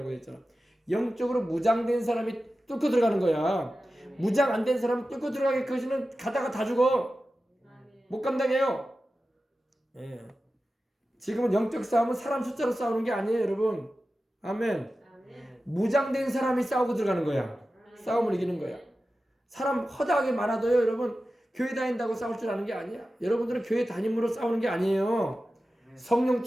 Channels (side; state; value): both; normal; correlation 0.94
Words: 했잖아. 영적으로 무장된 사람이 뚫고 들어가는 거야. 무장 안 된 사람은 뚫고 들어가기까지는 가다가 다 죽어. 못 감당해요. 예. 지금은 영적 싸움은 사람 숫자로 싸우는 게 아니에요, 여러분. 아멘. 무장된 사람이 싸우고 들어가는 거야. 싸움을 이기는 거야. 사람 허다하게 많아도요, 여러분, 교회 다닌다고 싸울 줄 아는 게 아니야. 여러분들은 교회 다님으로 싸우는 게 아니에요. 성령